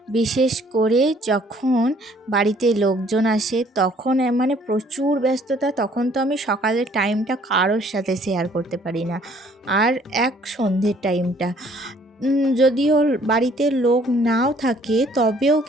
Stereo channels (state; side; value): normal; both; correlation 0.60